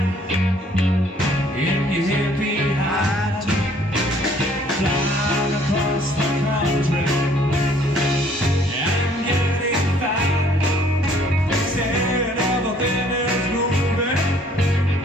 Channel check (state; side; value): normal; both; correlation 0.60